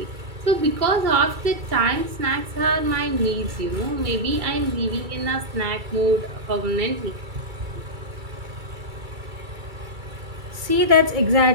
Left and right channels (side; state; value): left; late; 2.3 ms